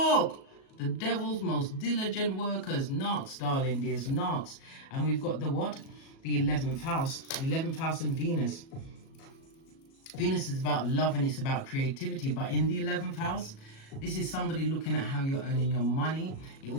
The devil's most diligent workers, knocks, darling dears, knocks. And we've got the what? The 11th house. The 11th house and Venus. Venus is about love and it's about creativity. But in the 11th house, this is somebody looking at how you're earning your money. It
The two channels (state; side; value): late; right; 37 ms